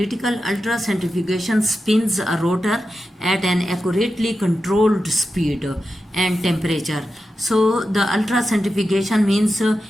ultracentrifugation spins a rotor at an accurately controlled speed and temperature. So the ultracentrifugation means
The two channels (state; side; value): normal; both; correlation 0.91